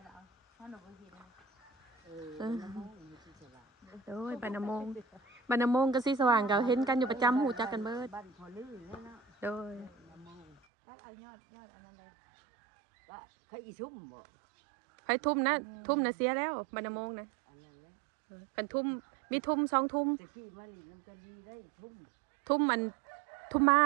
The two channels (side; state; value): left; drops out; at 10.6 s